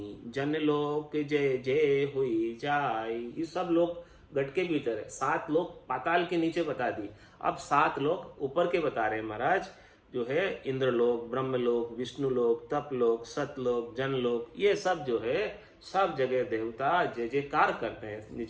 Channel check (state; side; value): identical; both; correlation 1.00